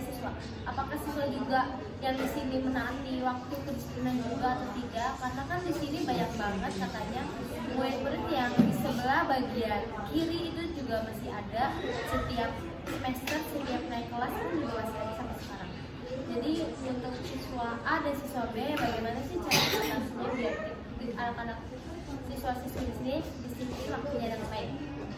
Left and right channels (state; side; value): identical; both; correlation 1.00